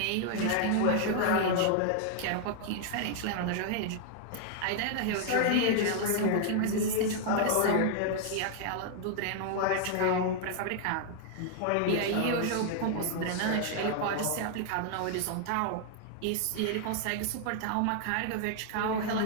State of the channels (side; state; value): both; different; correlation 0.00